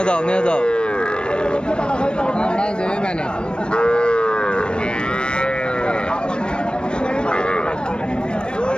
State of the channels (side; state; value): right; late; 0.053 ms